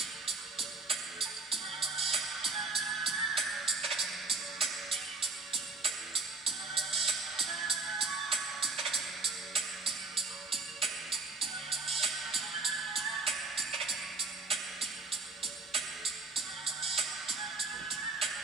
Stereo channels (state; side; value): quieter; left; 3.9 dB